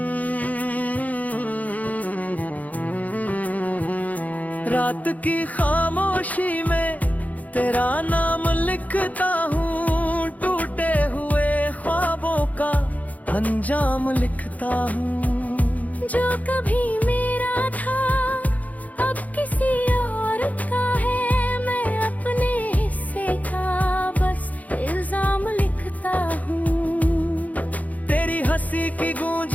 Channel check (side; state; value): right; late; 0.075 ms